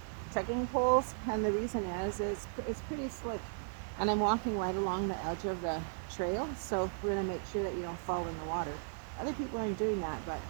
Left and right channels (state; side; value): silent; left; digital silence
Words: trekking poles, and the reason is it's pretty slick. And I'm walking right along the edge of the trail, so we're going to make sure that you don't fall in the water. Other people aren't doing that, but